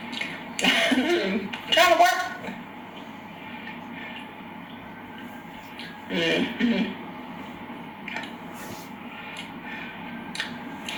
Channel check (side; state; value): both; identical; correlation 1.00